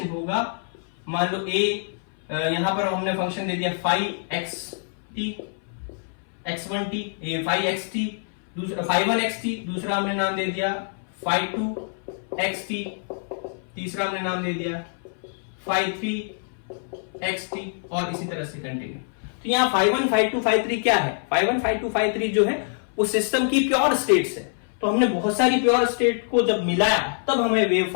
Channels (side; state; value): right; silent; 60 dB below the other